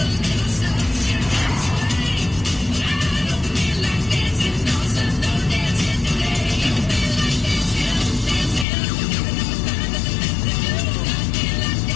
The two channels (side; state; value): right; drops out; at 8.7 s